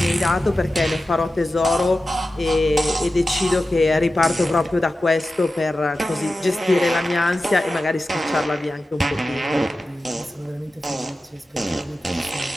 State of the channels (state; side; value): normal; both; correlation 0.93